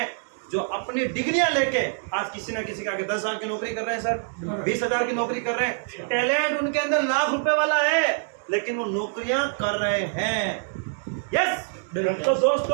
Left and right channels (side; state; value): left; silent; digital silence